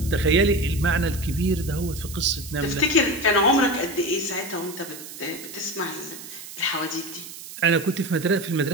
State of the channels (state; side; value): noise; right; hiss, 13 dB below the sound